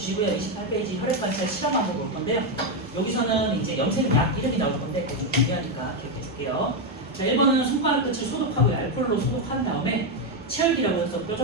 28페이지 혈액 관찰 실험 한번 볼 건데요. 여기서는 이제 염색약 이름이 나올 건데 좀 중요하니까 기억해 줄게요. 자, 1번은 손가락 끝을 소독하고요. 알코올로 소독한 다음에 체열기라고 해서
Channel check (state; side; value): normal; both; correlation 0.05